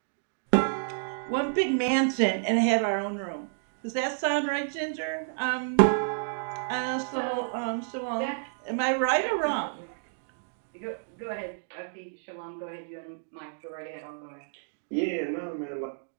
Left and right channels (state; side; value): silent; left; digital silence